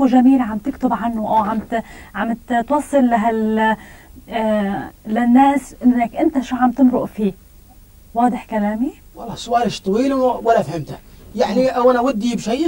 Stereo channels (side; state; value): both; identical; correlation 1.00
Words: جميل عم تكتب عنه، أو عم توصل للناس إنك أنت شو عم تمرق فيه. واضح كلامي؟ والله سؤالش طويل ولا فهمته يعني، او انا ودي